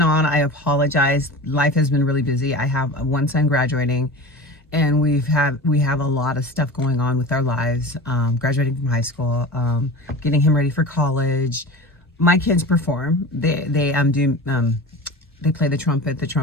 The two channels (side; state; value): both; normal; correlation 0.33